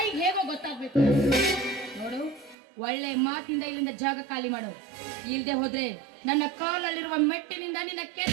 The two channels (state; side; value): drops out; left; at 2.6 s